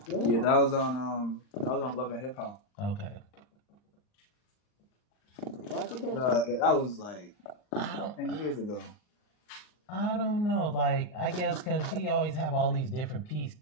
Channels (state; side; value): late; right; 39 ms